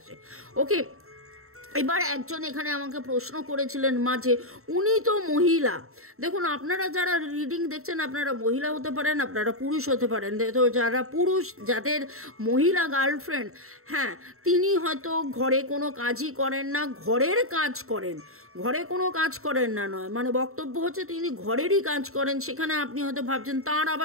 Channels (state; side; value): late; left; 0.63 ms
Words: ওকে, এবার একজন এখানে আমাকে প্রশ্ন করেছিলেন মাঝে, উনি তো মহিলা। দেখুন, আপনারা যারা রিডিং দেখছেন, আপনারা মহিলা হতে পারেন, আপনারা পুরুষ হতে পারেন। তো যারা পুরুষ, যাদের মহিলা গার্লফ্রেন্ড, হ্যাঁ, তিনি হয়তো ঘরে কোনো কাজই করেন না, ঘরের কাজ করেন, ঘরে কোনো কাজ করেন না নয়, মানে বক্তব্য হচ্ছে তিনি ঘরেরই কাজ করেন। সেখানে আপনি হয়তো ভাবছেন তার